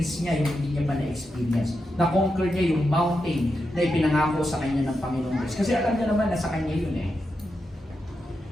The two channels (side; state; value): both; normal; correlation 0.87